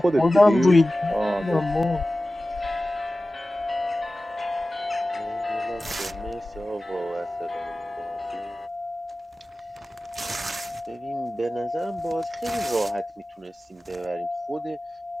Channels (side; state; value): both; normal; correlation 0.96